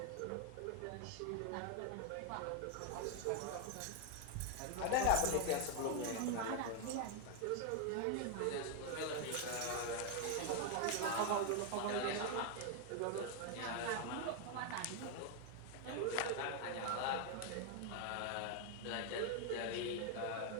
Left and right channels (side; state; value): both; different; correlation 0.01